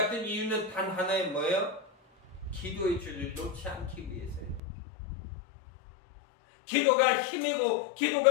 이유는 단 하나의 뭐예요? 기도의 줄을 놓지 않기 위해서요. 기도가 힘이고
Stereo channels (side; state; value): right; drops out; at 4.6 s